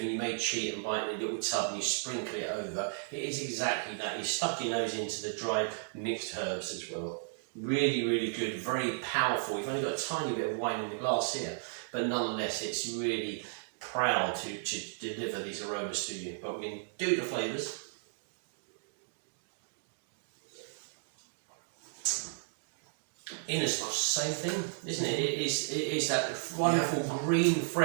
and you may cheat and buy it in a little tub and you sprinkle it over. It is exactly that. You stuck your nose into the dried mixed herbs as well. Really, really good, very powerful. You've only got a tiny bit of wine in the glass here, but nonetheless, it's really proud to deliver these aromas to you. But we can do the flavours. In as much same thing, isn't it? It is that wonderful green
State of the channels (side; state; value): left; silent; digital silence